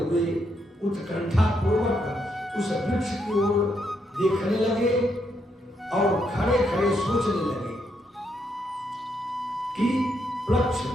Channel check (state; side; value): normal; both; correlation 0.77